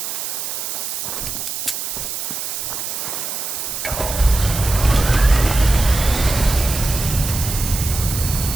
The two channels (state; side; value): noise; right; hiss, 4 dB below the sound